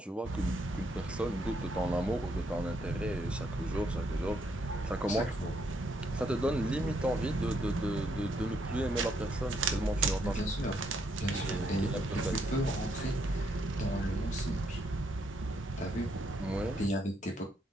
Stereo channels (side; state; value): both; normal; correlation 0.74